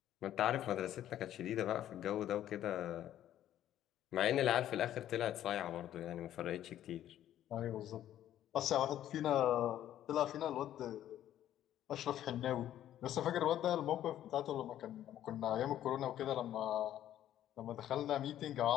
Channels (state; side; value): quieter; right; 11.8 dB